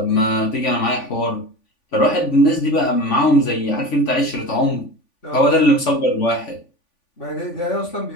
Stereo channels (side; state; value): right; late; 3.5 ms